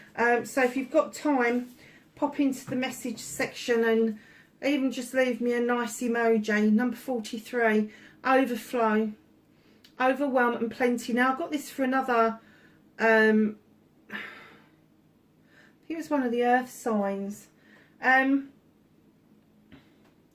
So if you've got time, pop into the message section and even just leave me a nice emoji. Number 43, overflow, overwhelm and plenty. Now I've got this for another, I think it was one of the earth signs.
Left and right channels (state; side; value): identical; both; correlation 1.00